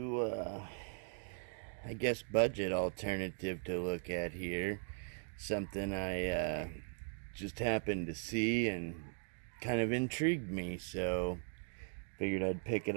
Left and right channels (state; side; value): silent; left; 52 dB below the other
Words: I guess, budget alternative to look at here. Something I just happened to see and kind of intrigued me, so figured I'd pick it